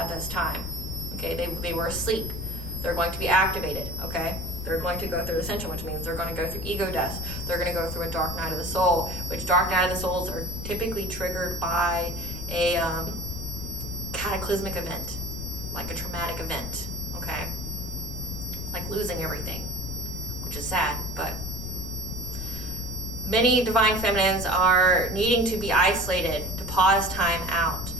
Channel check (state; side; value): noise; left; rumble, 7 dB below the sound